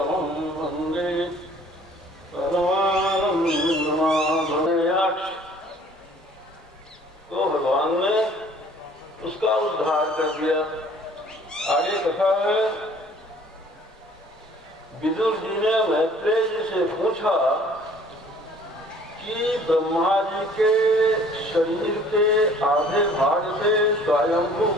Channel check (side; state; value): both; normal; correlation 0.54